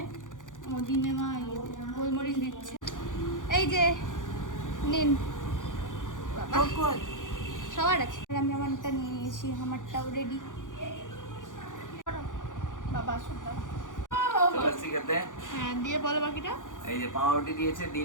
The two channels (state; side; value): late; right; 0.87 ms